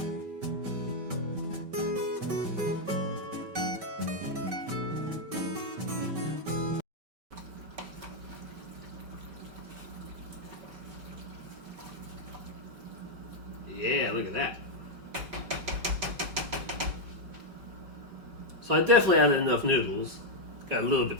Yeah, look at that. So I definitely added enough noodles. Got a little bit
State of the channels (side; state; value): left; late; 5.2 ms